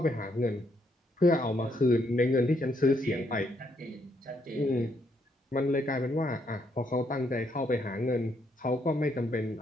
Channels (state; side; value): normal; both; correlation 0.74